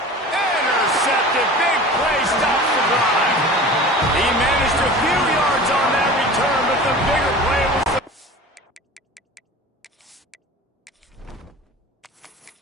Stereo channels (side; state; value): both; normal; correlation 0.38